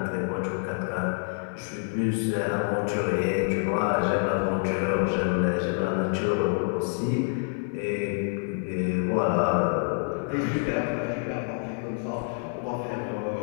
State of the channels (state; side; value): silent; right; 56 dB below the other